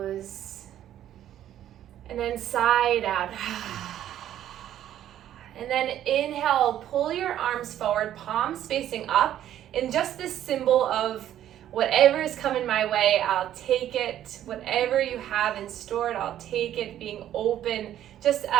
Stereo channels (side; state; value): left; quieter; 11.6 dB